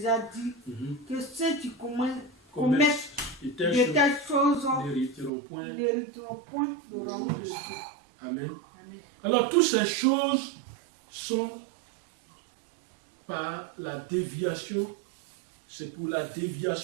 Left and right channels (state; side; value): drops out; left; at 5.3 s